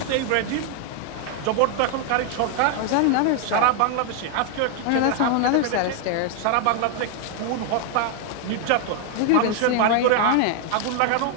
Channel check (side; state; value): both; different; correlation 0.00